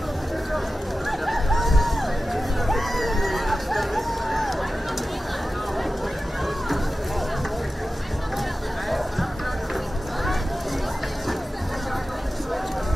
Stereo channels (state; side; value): normal; both; correlation 0.94